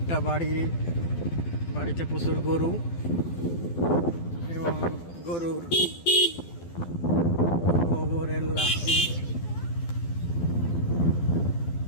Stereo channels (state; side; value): late; right; 12 ms